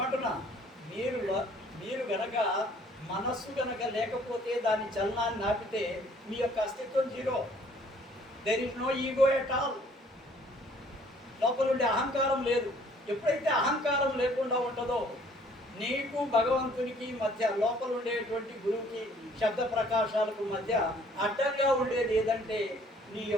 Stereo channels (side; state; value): both; normal; correlation 0.58